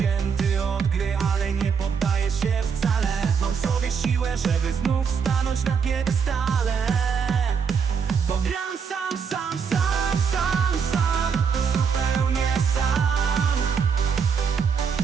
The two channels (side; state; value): left; quieter; 6.3 dB